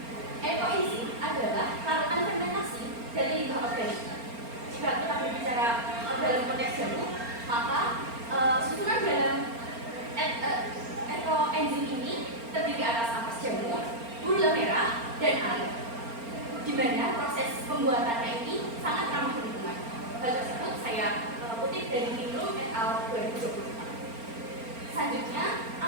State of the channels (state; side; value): late; left; 4.3 ms